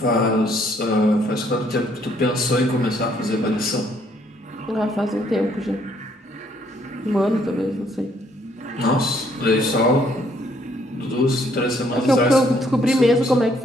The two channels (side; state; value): both; normal; correlation 0.67